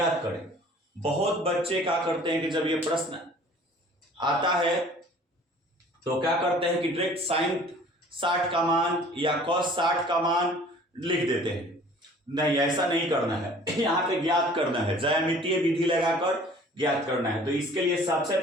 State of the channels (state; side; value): normal; both; correlation 0.50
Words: करें। बहुत बच्चे क्या करते हैं कि जब ये प्रश्न आता है तो क्या करते हैं कि डायरेक्ट साइन 60 का मान या कॉस 60 का मान लिख देते हैं। नहीं, ऐसा नहीं करना है। यहाँ पे ज्ञात करना है, ज्यामितीय विधि लगाकर ज्ञात करना है। तो इसके लिए सबसे